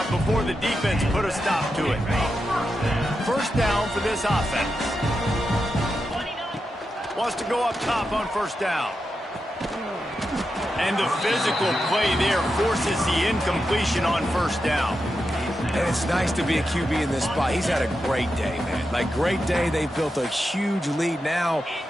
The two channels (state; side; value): normal; both; correlation 0.88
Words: before the defense put a stop to it. First down for this offense. Wants to go up top on first down. And the physical play there forces the incompletion on first down. And it's nice to be a QB in this spot. He's had a great day, man. Like, great day. They've built a huge lead now.